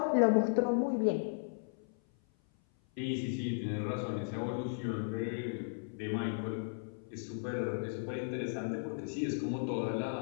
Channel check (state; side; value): silent; right; 54 dB below the other